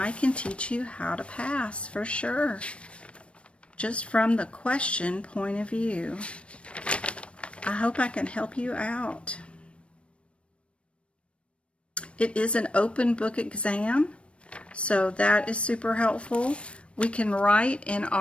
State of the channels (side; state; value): right; late; 0.060 ms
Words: can teach you how to pass for sure, just from the question point of view. I hope I can help you out. It is an open book exam, so that is super helpful. We can write in